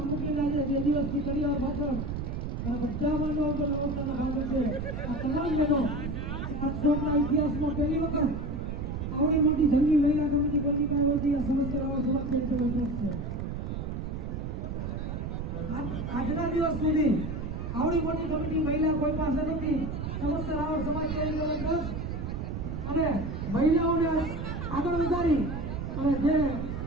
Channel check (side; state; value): right; noise; rumble, 4 dB below the sound